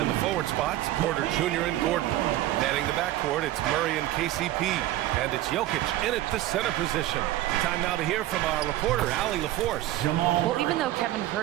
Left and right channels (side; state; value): left; quieter; 14.8 dB